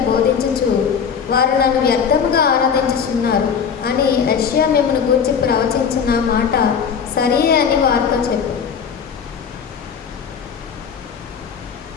బోధించుచు వారు నన్ను వ్యర్థముగా ఆరాధించుచున్నారు అని యెషయా మిమ్మును గూర్చి ప్రవచించిన మాట సరియే అని వారితో చెప్పు.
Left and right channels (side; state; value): right; quieter; 6.9 dB